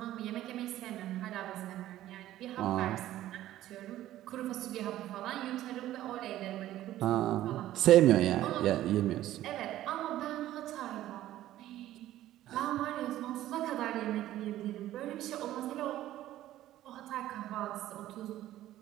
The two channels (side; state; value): left; quieter; 13.9 dB